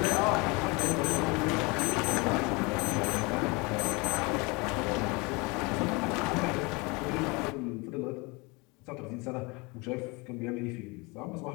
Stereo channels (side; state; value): right; quieter; 27.2 dB